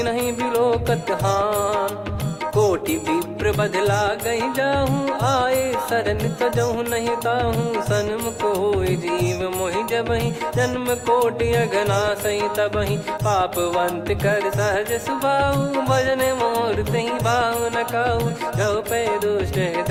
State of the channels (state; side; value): identical; both; correlation 1.00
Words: बिलोकत हान, कोटि विप्र बदला गई जाहूँ, आए शरण तजहु नहीं ताहूँ, सन्मुख होय जीव मोहि जबहि, जन्म कोटि अगना सही तबहि, पापवंत कर सहज सुभाऊ, भजन मोर तहि भाव न काहू, जो पै दुष्ट